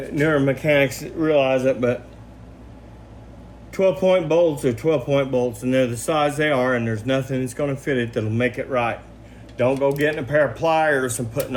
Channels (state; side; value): identical; both; correlation 1.00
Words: newer mechanics realize it, but 12 point bolts are 12 point bolts, and they're the size they are, and there's nothing that's going to fit it that'll make it right. Don't go getting a pair of pliers and putting